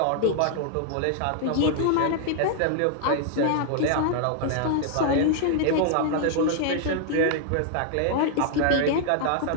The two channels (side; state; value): both; different; correlation -0.01